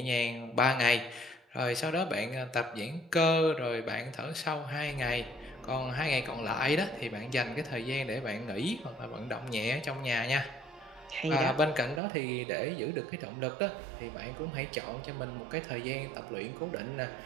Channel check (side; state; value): left; drops out; at 12.0 s